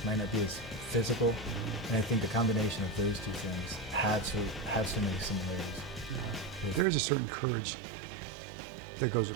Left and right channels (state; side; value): drops out; left; at 6.9 s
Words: not be as physical. And I think the combination of those two things have so many similarities. There's a certain courage that goes with